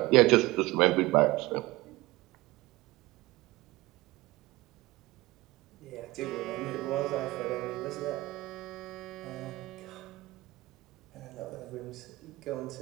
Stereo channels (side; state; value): left; quieter; 20.1 dB